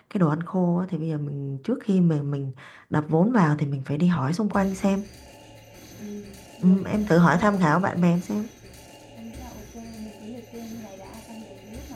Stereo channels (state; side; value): identical; both; correlation 1.00